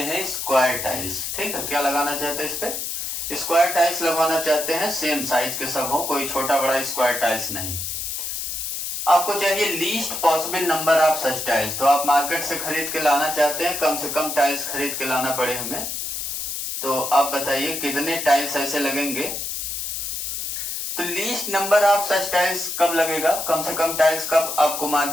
हैं स्क्वायर टाइल्स। ठीक है, क्या लगाना चाहते हैं इस पे स्क्वायर टाइल्स लगवाना चाहते हैं, सेम साइज के सब हो, कोई छोटा बड़ा स्क्वायर टाइल्स नहीं। आपको चाहिए least possible number of such tiles. तो आप मार्केट से खरीद के लाना चाहते हैं, कम से कम टाइल्स खरीद के लाना पड़े हमें। तो आप बताइए कितने टाइल्स ऐसे लगेंगे। तो least number of such tiles कब लगेगा, कम से कम टाइल्स कब आपको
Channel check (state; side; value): noise; left; hiss, 4 dB below the sound